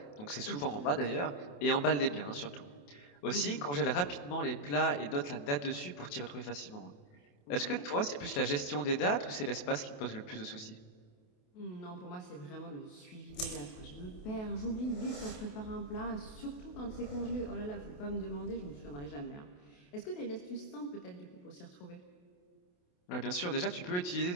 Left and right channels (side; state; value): right; late; 28 ms